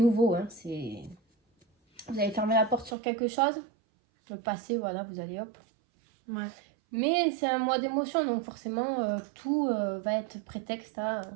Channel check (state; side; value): drops out; left; at 3.0 s